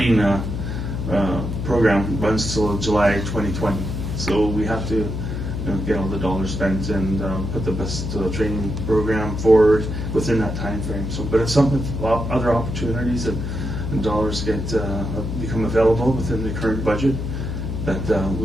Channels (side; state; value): left; noise; hum, 4 dB below the sound